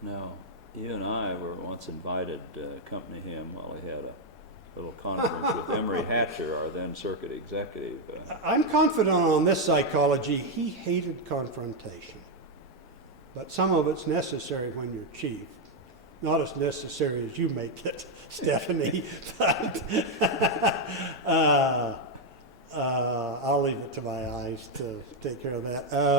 Now, you and I were once invited to accompany him while he had a little conference with Emory Hatcher, our then circuit executive. I'm confident on this psychology. He hated confrontation. But some of it's necessary when you're chief. Not as necessary as you make it, Stephanie. But I'll leave it to my eyes to take care of that.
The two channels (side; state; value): both; normal; correlation 0.02